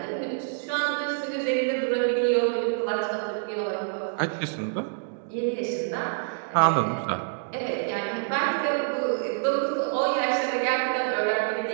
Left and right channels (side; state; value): left; silent; digital silence